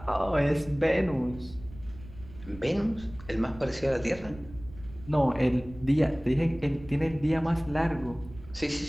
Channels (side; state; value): right; noise; rumble, 17 dB below the sound